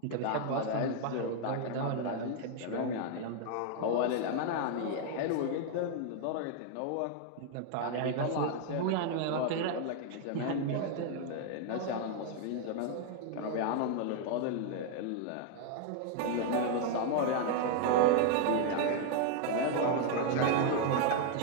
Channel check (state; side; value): different; both; correlation 0.00